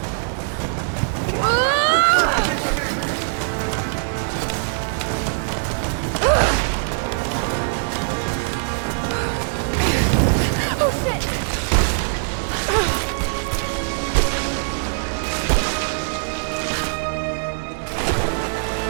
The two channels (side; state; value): left; silent; digital silence